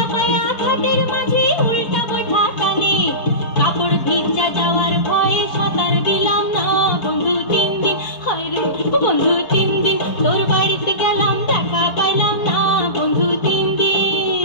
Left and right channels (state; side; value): late; right; 4.3 ms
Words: পায়া ঘাটের মাঝে উল্টা বৈঠা টানে কাপড় ভিজা যাওয়ার ভয়ে সাঁতার দিলাম না বন্ধু 3 দিন হায় রে ও বন্ধু 3 দিন তোর বাড়িতে গেলাম দেখা পাইলাম না বন্ধু 3